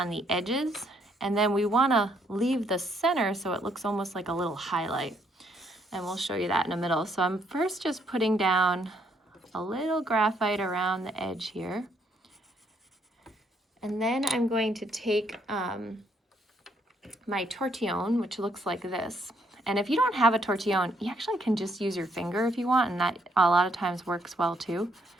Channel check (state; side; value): normal; both; correlation 0.71